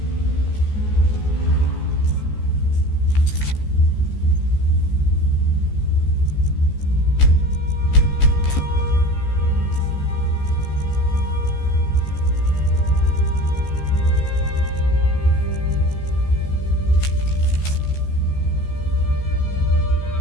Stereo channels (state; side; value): late; right; 14 ms